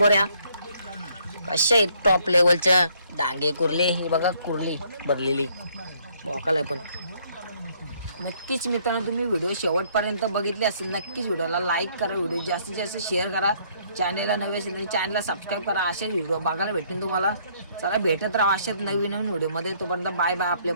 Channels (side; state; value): both; inverted; correlation -0.65